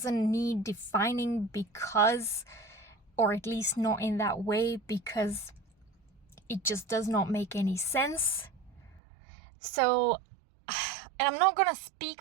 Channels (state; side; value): drops out; left; at 9.0 s